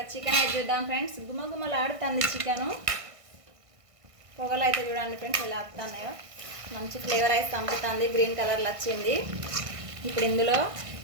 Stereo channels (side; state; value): left; late; 1.5 ms